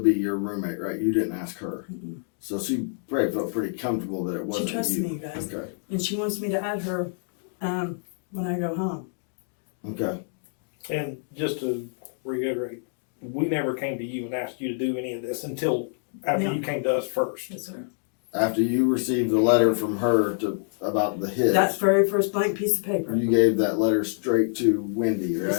be your roommate, right? You didn't ask her. Mhm. So she probably felt pretty comfortable that it She wasn't trusted you. me, you guys. Okay. And she wants me to add her when I go home. Okay. And just to reiterate, we never came to you and asked you to do any of this until after No. you came to us first. Yes, sir. After you received the letter from her about the hitch, That very first blank piece of paper. you gave that letter straight to Wendy, right?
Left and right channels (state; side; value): silent; right; 61 dB below the other